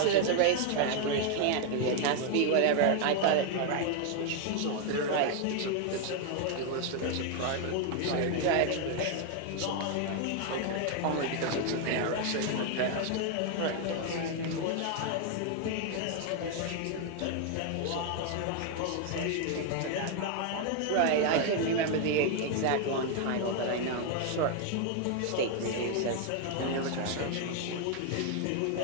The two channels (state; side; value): different; both; correlation 0.01